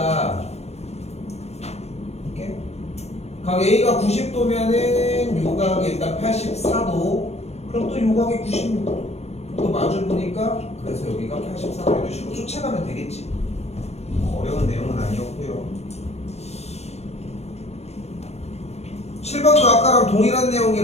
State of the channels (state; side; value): late; right; 0.31 ms